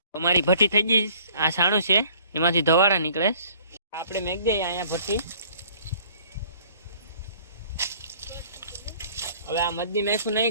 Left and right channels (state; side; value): inverted; both; correlation -0.55